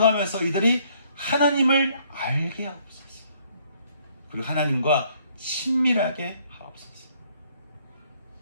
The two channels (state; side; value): inverted; both; correlation -0.65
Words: 이들이 하나님을 알게 하옵소서. 그리고 하나님과 친밀하게 하옵소서.